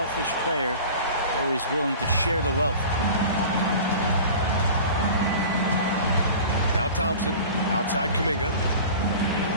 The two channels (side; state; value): both; inverted; correlation -0.39